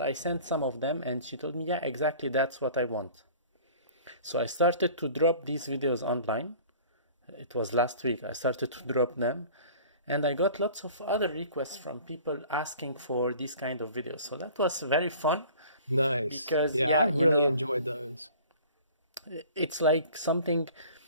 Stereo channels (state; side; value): inverted; both; correlation -0.47